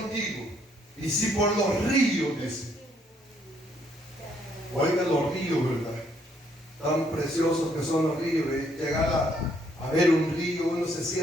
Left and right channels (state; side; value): normal; both; correlation 0.69